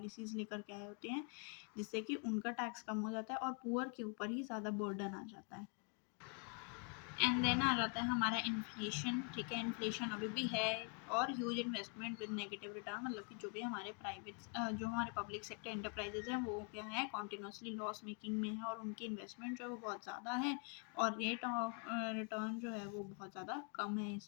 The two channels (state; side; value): quieter; right; 36.8 dB